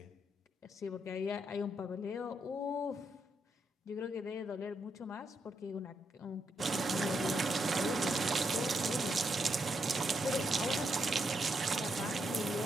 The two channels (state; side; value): normal; both; correlation 0.80